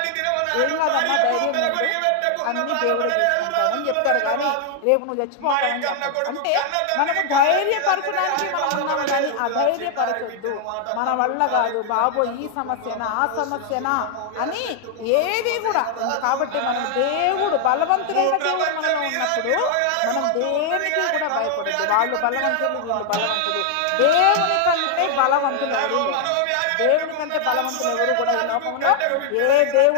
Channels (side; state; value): both; different; correlation 0.00